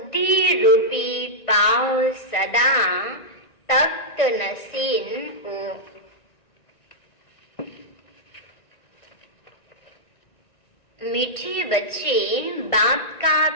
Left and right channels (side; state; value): right; late; 1.6 ms